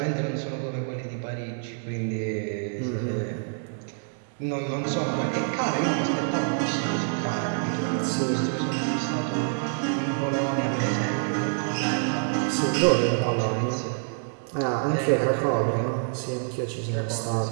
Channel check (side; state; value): left; silent; 60 dB below the other